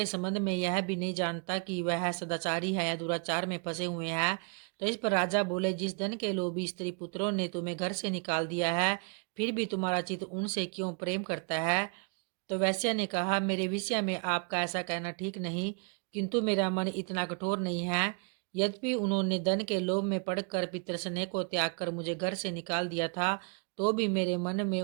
संबंध में यह भी नहीं जानता कि वह सदाचारी है या दुराचार में फंसे हुए हैं। तो इस पर राजा बोले, जिस धन के लोभी स्त्री पुत्रों ने तुम्हें घर से निकाल दिया है, फिर भी तुम्हारा चित्त उनसे क्यों प्रेम करता है। तो वैश्य ने कहा, मेरे विषय में आपका ऐसा कहना ठीक नहीं, किंतु मेरा मन इतना कठोर नहीं है। यद्यपि उन्होंने धन के लोभ में पड़कर पितृस्नेह को त्याग कर मुझे घर से निकाल दिया था, तो भी मेरे मन में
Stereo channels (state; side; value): quieter; left; 37.4 dB